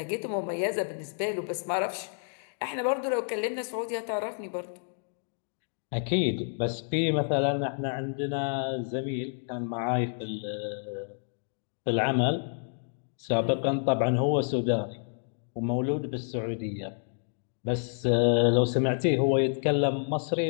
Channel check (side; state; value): right; silent; digital silence